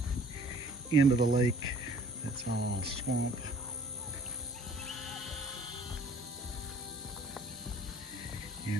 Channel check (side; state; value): both; normal; correlation 0.53